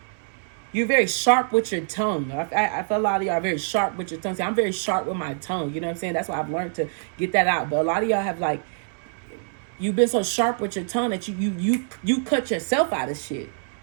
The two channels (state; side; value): silent; left; 62 dB below the other